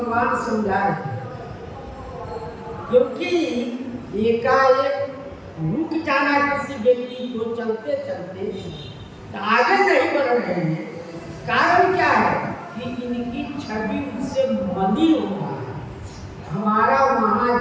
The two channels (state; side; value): identical; both; correlation 1.00